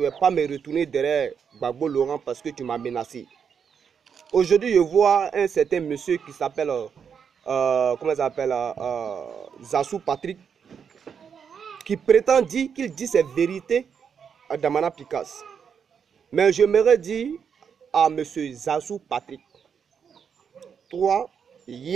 vais pas me retourner derrière Gbagbo Laurent parce que tu m'as menacé. Aujourd'hui, je vois un certain monsieur qui s'appelle, comment il s'appelle, Zassou Patrick, qui prétend dire qu'il dit ses vérités à Damana Picasse. Mais je m'aurais dit à monsieur Zassou Patrick, toi,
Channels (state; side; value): quieter; left; 7.0 dB